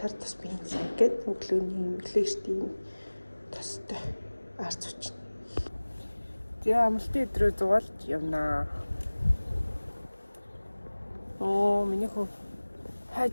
тус бензин гээд өглөөний өглөөштэй тустай арц учраас. Тэгээ амралтын өдрөө зугаалж явнаа. Миний хөө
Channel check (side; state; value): both; inverted; correlation -1.00